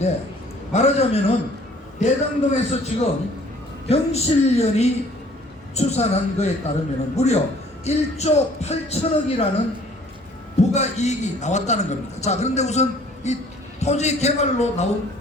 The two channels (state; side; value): normal; both; correlation 0.55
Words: 말하자면은 대장동에서 지금 경실련이 추산한 거에 따르면은 무려 1조 8천억이라는 부가이익이 나왔다는 겁니다. 자, 그런데 우선 이 토지 개발로 나온